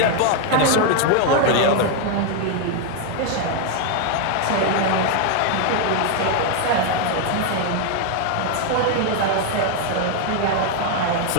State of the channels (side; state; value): both; different; correlation 0.01